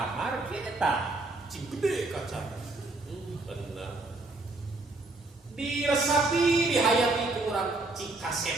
kieu eta. Cing gede kaca. Bener. Diresapi, dihayati ku urang cing kaset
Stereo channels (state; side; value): quieter; left; 3.1 dB